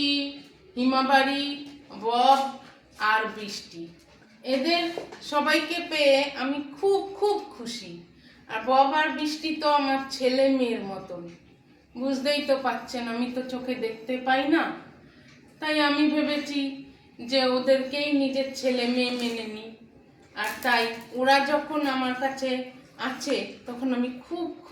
হিমাবাড়ি, বব আর বৃষ্টি। এদের সবাইকে পেয়ে আমি খুব খুব খুশি। আর বব আর বৃষ্টি তো আমার ছেলে মেয়ের মতন, বুঝতেই তো পাচ্ছেন আমি তো চোখে দেখতে পাই না, তাই আমি ভেবেছি যে ওদেরকেই নিজের ছেলে মেয়ে মেনে নিই। আর তাই ওরা যখন আমার কাছে আছে তখন আমি খুব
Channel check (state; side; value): identical; both; correlation 1.00